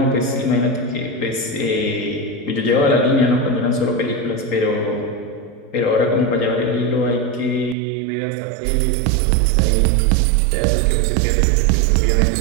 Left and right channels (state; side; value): drops out; left; at 7.8 s